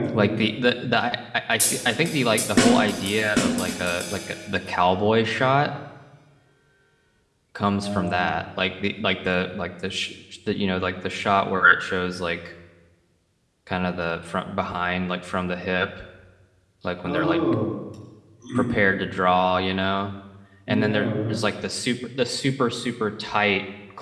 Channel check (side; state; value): both; identical; correlation 1.00